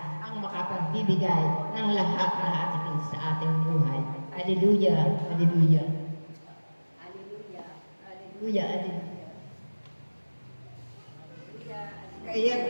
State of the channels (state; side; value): inverted; both; correlation -1.00